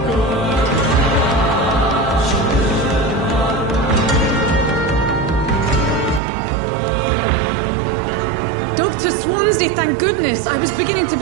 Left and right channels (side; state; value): left; drops out; at 6.2 s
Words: Dr. Swansea, thank goodness. I was beginning to